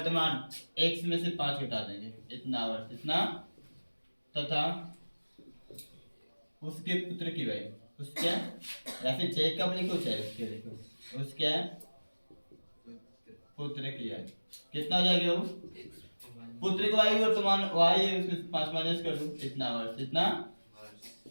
x में से 5 घटा देंगे, इतना वर्ष, इतना तथा उसके पुत्र की वही, उसके या फिर जैकब लिखो चाहे उसके लिखो, उसके पुत्र की आयु कितना हो जाएगी बाबू? पुत्र की आयु वर्तमान y है, उसमें 5 माइनस कर दो, इतना वर्ष, इतना।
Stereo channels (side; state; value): both; inverted; correlation -1.00